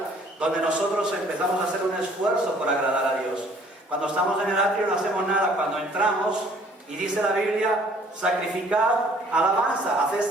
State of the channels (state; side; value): normal; both; correlation 0.57